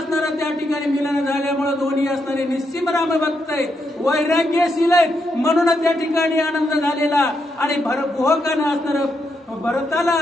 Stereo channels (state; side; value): normal; both; correlation 0.81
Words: त्या ठिकाणी मिलन झाल्यामुळे दोन्ही असणारे निश्चिम रामभक्त आहेत, वैराग्यशील आहेत म्हणून त्या ठिकाणी आनंद झालेला आणि गुहकानं असणारं भरताला